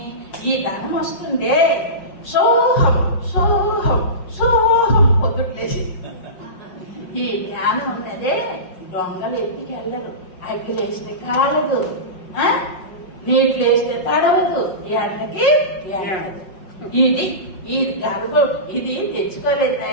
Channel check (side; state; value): right; late; 5.4 ms